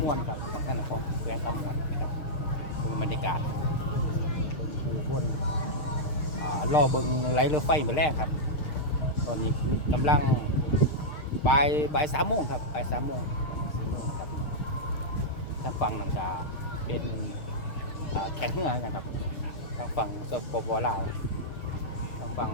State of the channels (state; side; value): late; right; 6.6 ms